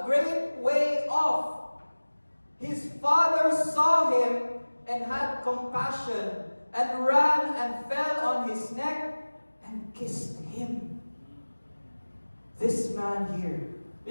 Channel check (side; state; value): both; inverted; correlation -1.00